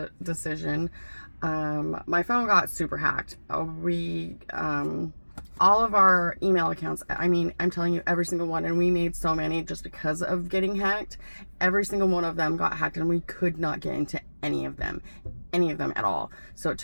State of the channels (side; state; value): both; inverted; correlation -1.00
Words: decision, my phone got super hacked. All of our email accounts, I mean, I'm telling you, every single one, and we made so many just because of getting hacked. Every single one of them got hacked, and we could not get into any of them at all. So it